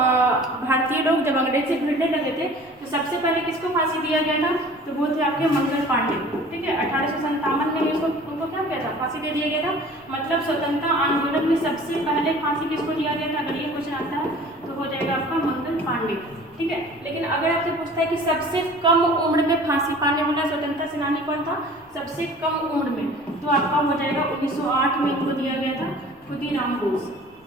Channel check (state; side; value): normal; both; correlation 0.46